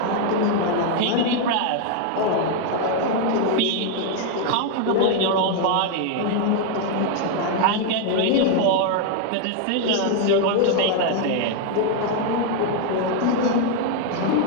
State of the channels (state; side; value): different; both; correlation 0.00